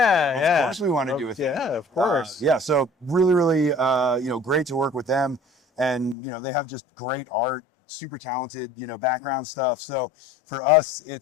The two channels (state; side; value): drops out; right; at 6.2 s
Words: Of course we want to do a thing. Yeah, of course. Yeah, so really, you know, great to work with them. And, you know, they have just great art, super talented, you know, background stuff. So for us,